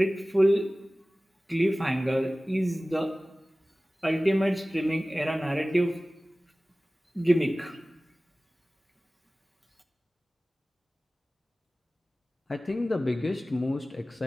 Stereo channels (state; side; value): normal; both; correlation 0.97